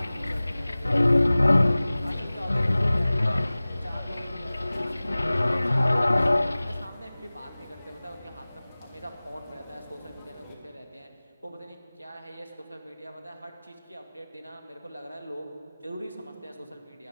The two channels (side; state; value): both; inverted; correlation -0.99